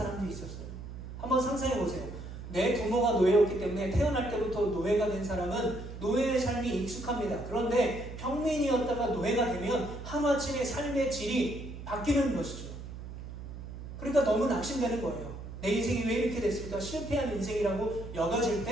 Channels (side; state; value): right; noise; hum, 10 dB below the sound